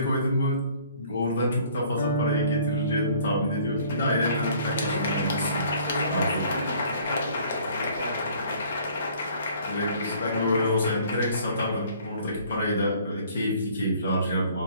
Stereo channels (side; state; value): both; inverted; correlation -0.55